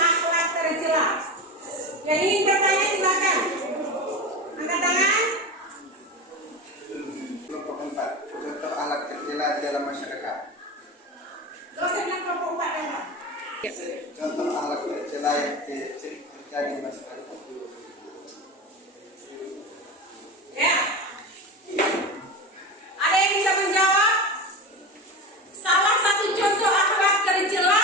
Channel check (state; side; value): normal; both; correlation 0.24